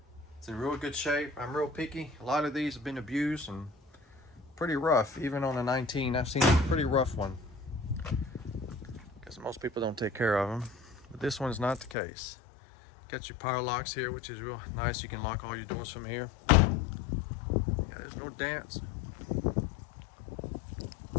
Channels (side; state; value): right; drops out; at 12.0 s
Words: It's in real good shape. I'm real picky. A lot of these have been abused and pretty rough. Even on a 19, I've seen a pretty rough one. Because most people don't take care of them. But this one's not the case. Got your power locks here, which is real nice. You can lock all your doors from here. Yeah, there's no dents.